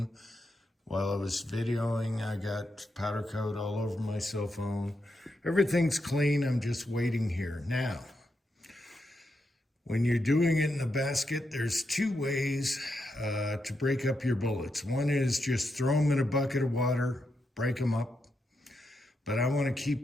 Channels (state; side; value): normal; both; correlation 0.84